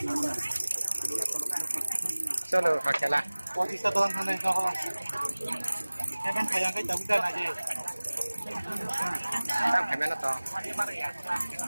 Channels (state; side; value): inverted; both; correlation -1.00